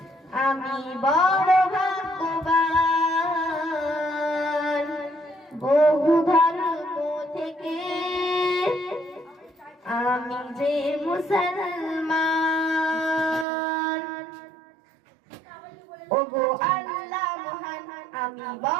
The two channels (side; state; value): left; drops out; at 13.5 s